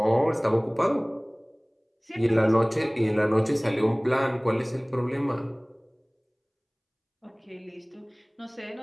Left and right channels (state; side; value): identical; both; correlation 1.00